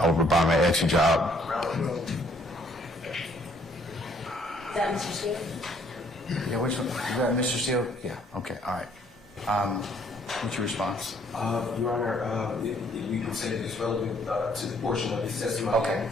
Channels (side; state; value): both; normal; correlation 0.64